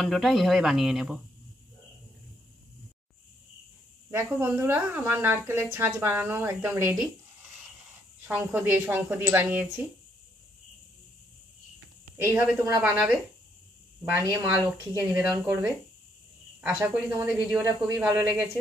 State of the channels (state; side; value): normal; both; correlation 0.72